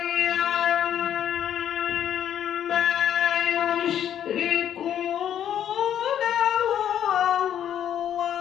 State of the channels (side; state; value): right; quieter; 10.0 dB